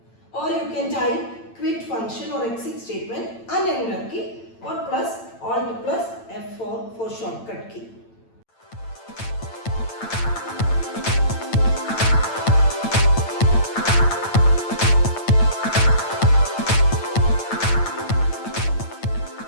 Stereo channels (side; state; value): right; late; 8.9 ms